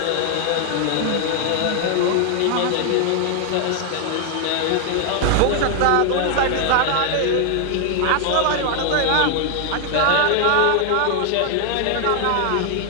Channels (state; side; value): different; both; correlation 0.00